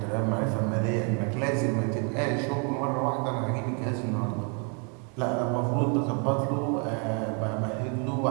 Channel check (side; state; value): left; quieter; 37.5 dB